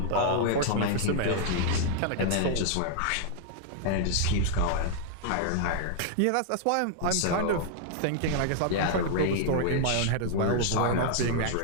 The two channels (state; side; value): different; both; correlation -0.01